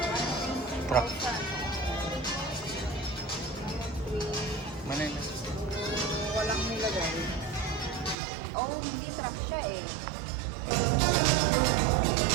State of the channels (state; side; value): drops out; left; at 8.2 s